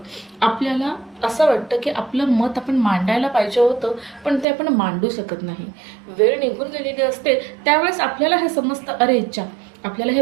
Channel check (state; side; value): drops out; left; at 4.5 s